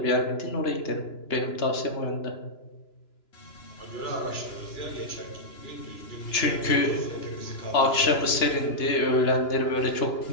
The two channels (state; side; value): late; right; 2.9 ms